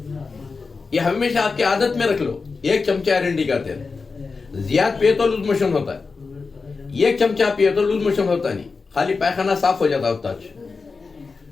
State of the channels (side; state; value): right; quieter; 4.5 dB